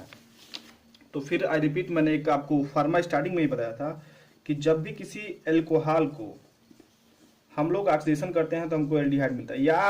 तो फिर आई रिपीट, मैंने एक आपको फार्मा स्टार्टिंग में ही बताया था कि जब भी किसी एल्कोहल को हम लोग ऑक्सीडेशन करते हैं तो हमको एल्डिहाइड मिलता है।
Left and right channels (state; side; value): identical; both; correlation 1.00